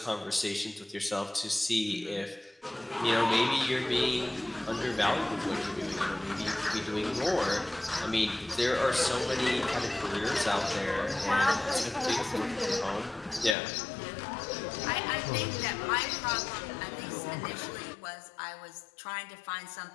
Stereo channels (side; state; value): right; drops out; at 13.6 s